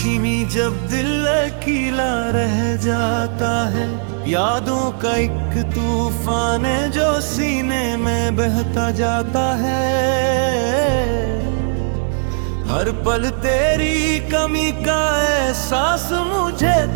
में जब दिल अकेला रह जाता है, यादों का एक तूफान है जो सीने में बहता जाता है। हर पल तेरी कमी का एहसास मुझे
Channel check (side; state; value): left; silent; digital silence